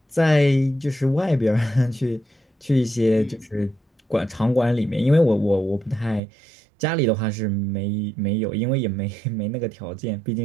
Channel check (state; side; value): drops out; left; at 6.2 s